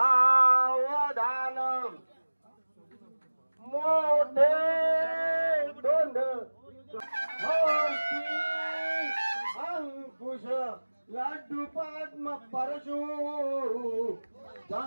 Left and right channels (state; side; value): inverted; both; correlation -1.00